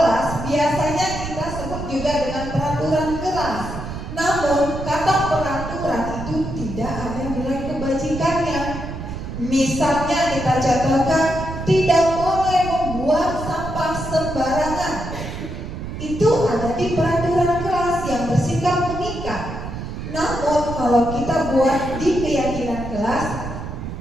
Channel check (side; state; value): right; noise; rumble, 7 dB below the sound